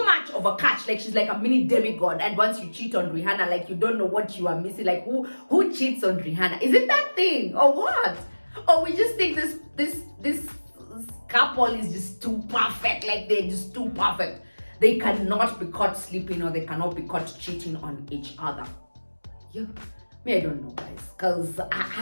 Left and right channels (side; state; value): both; inverted; correlation -1.00